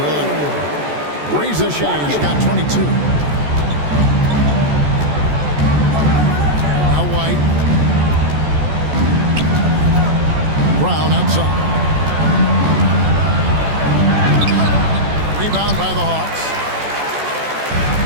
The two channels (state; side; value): late; left; 14 ms